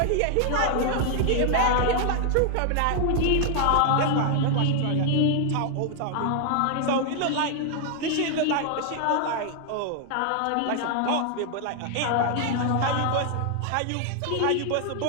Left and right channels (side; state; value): both; different; correlation 0.00